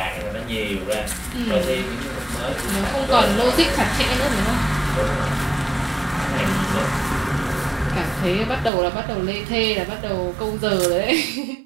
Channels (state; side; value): drops out; left; at 8.7 s